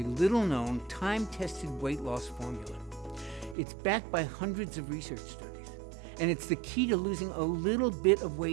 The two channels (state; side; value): drops out; left; at 3.6 s